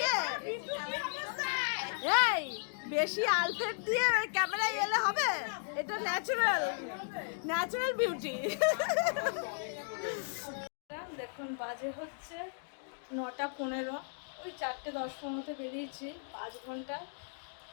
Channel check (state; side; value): silent; right; digital silence